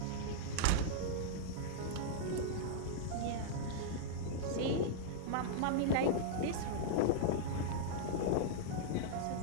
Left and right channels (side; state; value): both; different; correlation -0.02